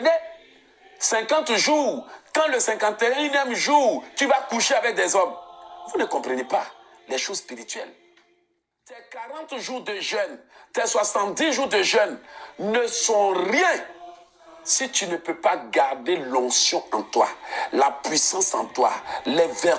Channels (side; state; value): both; identical; correlation 1.00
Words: 50 jours quand le 51e jour, tu vas coucher avec des hommes? Vous ne comprenez pas les choses spirituelles. Tes 40 jours de jeûne, tes 70 jours de jeûne ne sont rien si tu ne peux pas garder l'onction en toi, la puissance en toi, les